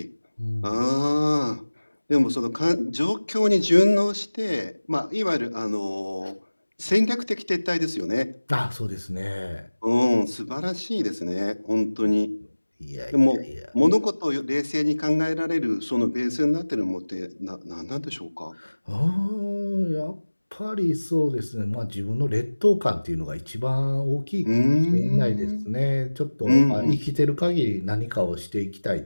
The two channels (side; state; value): both; inverted; correlation -1.00